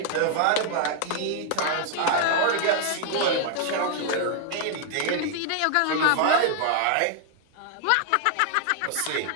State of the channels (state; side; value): different; both; correlation 0.00